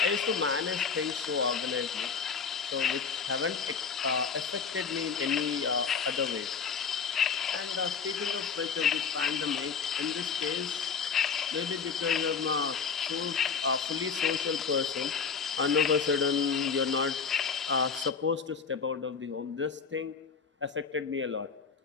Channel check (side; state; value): right; quieter; 6.0 dB